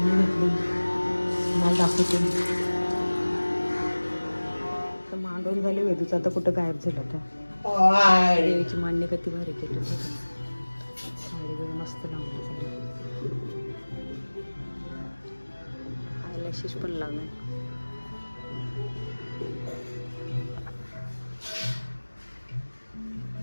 घेतली. मला दाखवते. तर मांडून झाली वेदूचं. आता कुठं गायब झालं तर. देवीची मांडणी किती भारी केली. साडी वगैरे मस्त लावली. आयलॅशेस पण लावले.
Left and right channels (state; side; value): inverted; both; correlation -1.00